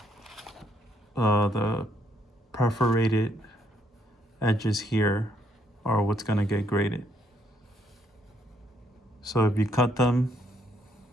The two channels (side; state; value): both; normal; correlation 0.71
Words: the perforated edges here are what's gonna get graded. So if you cut them,